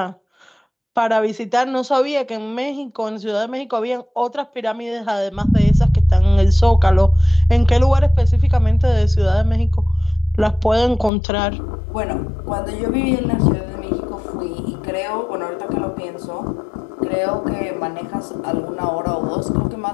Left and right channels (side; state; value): right; drops out; at 11.1 s